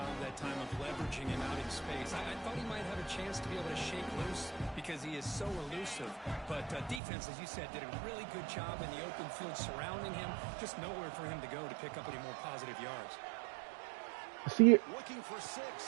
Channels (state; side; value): drops out; left; at 7.0 s